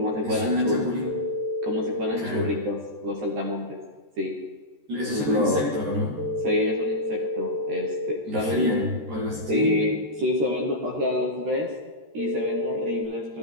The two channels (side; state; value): left; late; 13 ms